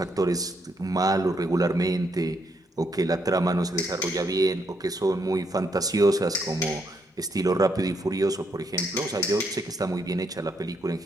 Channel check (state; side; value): normal; both; correlation 0.76